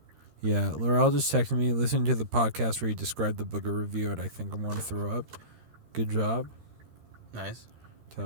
Yeah. Laurel just texted me, listening to the podcast where you described the booger review, and I think I'm going to throw up. Good job. Nice.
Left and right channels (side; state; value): left; late; 13 ms